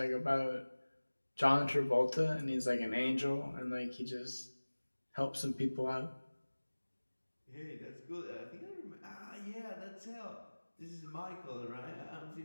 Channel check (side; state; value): both; inverted; correlation -1.00